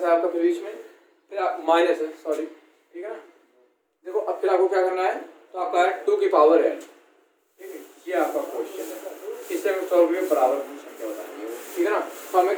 है आपका बीच में, फिर माइनस है, सॉरी, ठीक है ना। देखो अब फिर आपको क्या करना है, तो आपका है 2 की पावर n, ठीक है, ये आपका क्वेश्चन है। इससे हम सॉल्व करके बराबर की संख्या बतानी है, ठीक है ना। तो हमें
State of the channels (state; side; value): identical; both; correlation 1.00